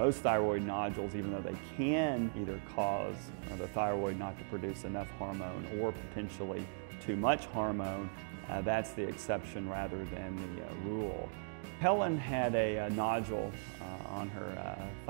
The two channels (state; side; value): silent; left; digital silence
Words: thyroid nodules, even though they can either cause the thyroid not to produce enough hormone or potentially too much hormone, that's the exception rather than the rule. Helen had a nodule on her